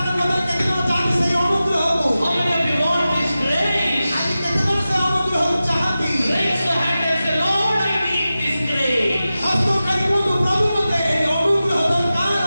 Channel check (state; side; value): inverted; both; correlation -0.94